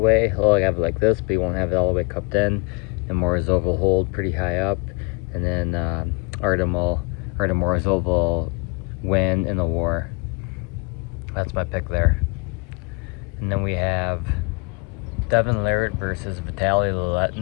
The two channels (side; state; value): right; quieter; 30.2 dB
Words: He'll have it like this, but he won't have it all the way cupped in. And Morozov will hold pretty high up, and then Artem Morozov will win in the war. That's my pick there. And then we have Devin Larratt versus Vitali